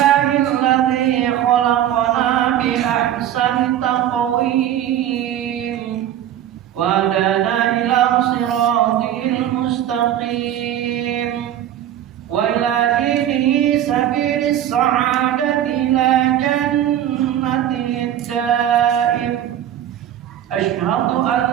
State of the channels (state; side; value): quieter; left; 11.1 dB